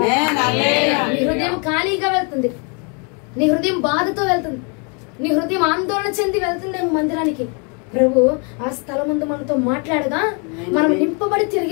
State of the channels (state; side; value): quieter; right; 36.0 dB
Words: హృదయం ఖాళీగా వెళ్తుంది, నీ హృదయం బాధతో వెళ్తుంది, నీ హృదయం ఆందోళన చెంది వెళ్తుంది మందిరానికి. ప్రభు ఆ స్థలం ముందు మనతో మాట్లాడగా మనం నింపబడి